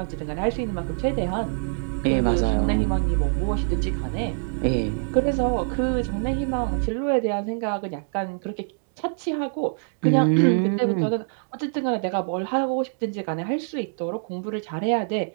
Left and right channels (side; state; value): left; silent; digital silence